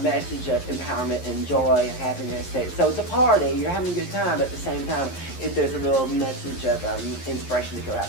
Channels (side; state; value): right; late; 11 ms